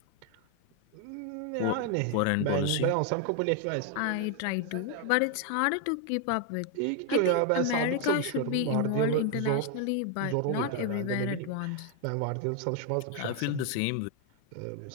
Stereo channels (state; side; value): different; both; correlation 0.01